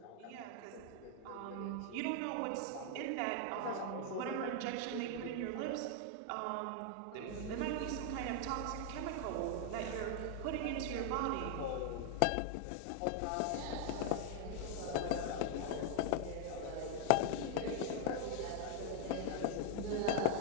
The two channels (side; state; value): both; different; correlation 0.00